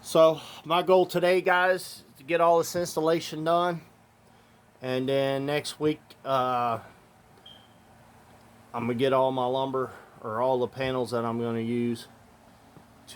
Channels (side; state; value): both; identical; correlation 1.00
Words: my goal today, guys, is to get all this installation done. And then next week, I'm going to get all my lumber, or all the panels that I'm going to use